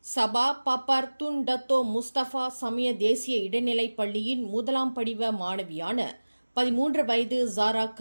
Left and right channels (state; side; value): inverted; both; correlation -1.00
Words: சபா பாப்பார் துன் டத்தோ முஸ்தபா சமய தேசிய இடைநிலைப் பள்ளியின் முதலாம் படிவ மாணவியான 13 வயது ஜாரா